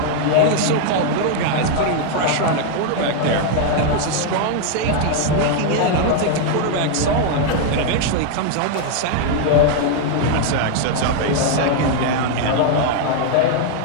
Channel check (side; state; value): both; different; correlation 0.00